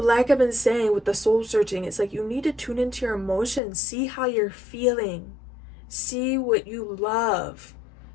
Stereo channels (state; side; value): drops out; right; at 3.6 s